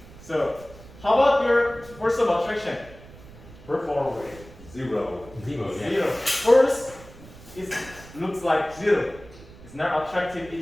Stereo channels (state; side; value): noise; right; rumble, 19 dB below the sound